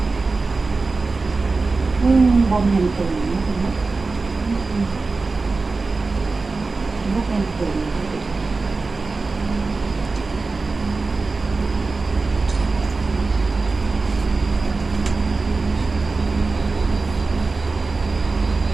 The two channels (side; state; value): left; quieter; 3.9 dB